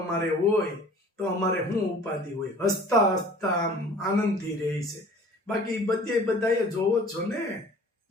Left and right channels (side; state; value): both; normal; correlation 0.47